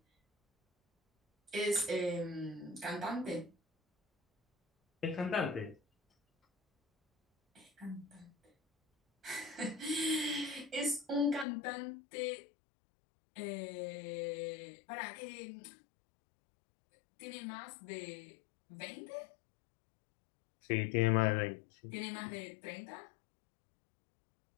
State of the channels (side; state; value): right; drops out; at 11.5 s